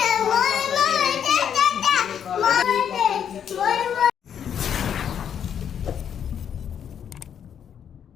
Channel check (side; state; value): right; quieter; 8.5 dB